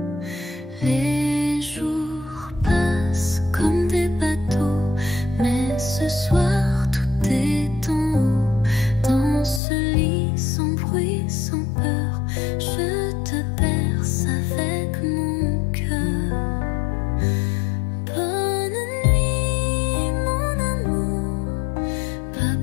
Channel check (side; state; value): right; drops out; at 9.6 s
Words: Les jours passent comme des bateaux, mais ce soir tout est en haut. Dans ce lit sans bruit, sans peur, je te berce avec mon cœur. Bonne nuit mon amour, pas